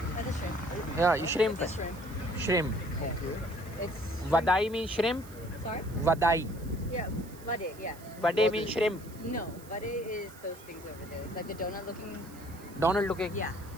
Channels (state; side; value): noise; right; hiss, 21 dB below the sound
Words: The shrimp. Yeah, shrimp. The shrimp. Shrimp. Okay. It's Vadai means shrimp. sorry. Vadai. Yeah, vade. Yeah. Vade means shrimp. No, vade is those things over there, like the donut looking. Donald looking. Yeah.